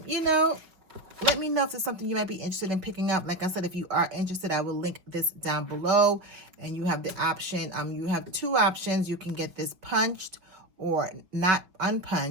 You know, let me know if there's something you might be interested in picking up. Like I said, if you are interested, I will link this down below. And you have the option, you have 2 options. You can get this punched or not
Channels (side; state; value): left; late; 5.5 ms